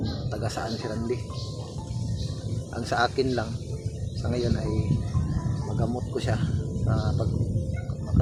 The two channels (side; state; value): both; identical; correlation 1.00